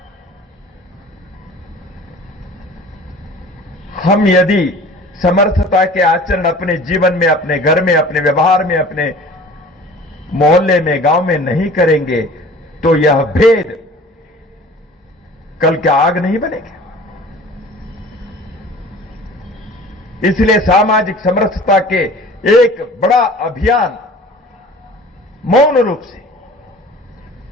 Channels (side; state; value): both; normal; correlation 0.45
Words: हम यदि समर्थता के आचरण अपने जीवन में, अपने घर में, अपने व्यवहार में, अपने मोहल्ले में, गांव में नहीं करेंगे तो यह भेद कल के आग नहीं बनेगा। इसलिए सामाजिक समरसता के एक बड़ा अभियान मौन रूप से,